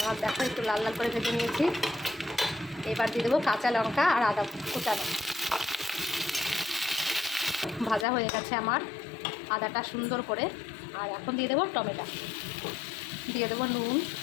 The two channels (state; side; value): drops out; right; at 8.1 s